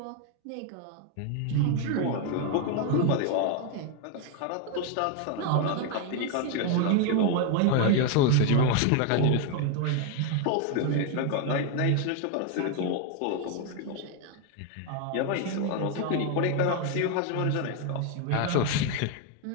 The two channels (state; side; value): different; both; correlation 0.01